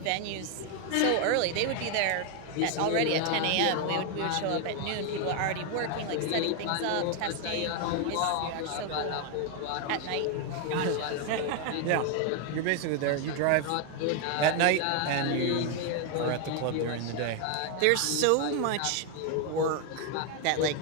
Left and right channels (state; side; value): different; both; correlation 0.01